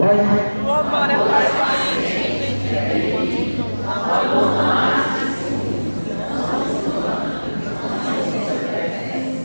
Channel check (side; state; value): both; inverted; correlation -1.00